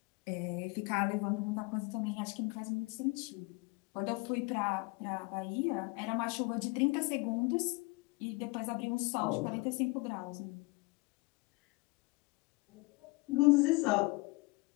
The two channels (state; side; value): quieter; right; 26.3 dB